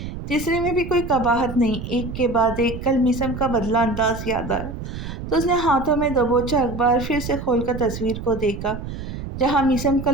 تیسرے میں بھی کوئی قباحت نہیں۔ ایک کے بعد ایک کل میثم کا بدلہ انداز یاد آیا تو اس نے ہاتھوں میں دبوچا اخبار پھر سے کھول کر تصویر کو دیکھا، جہاں میثم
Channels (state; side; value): noise; right; rumble, 8 dB below the sound